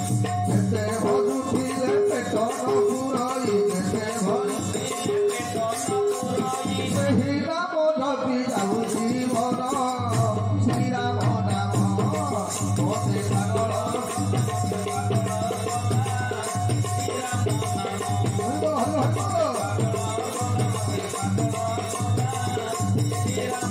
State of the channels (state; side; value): identical; both; correlation 1.00